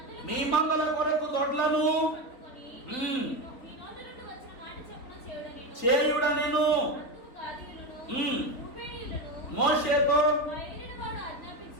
మీ మందల కొరకు దొడ్లను చేయుడనెను. మోషేతో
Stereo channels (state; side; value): late; right; 4.1 ms